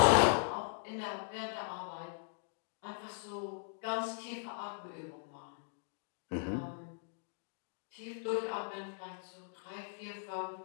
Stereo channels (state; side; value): silent; right; digital silence